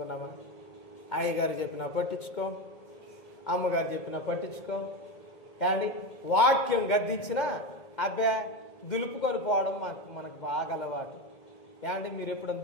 అయ్యగారు చెప్పినా పట్టించుకో, అమ్మగారు చెప్పినా పట్టించుకో, కానీ వాక్యం గద్దించినా అబ్బే దులుపుకొని పోవడం మనకు బాగా అలవాటు. ఏమంటే మీరు ఎప్పుడైనా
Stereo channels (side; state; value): right; late; 2.2 ms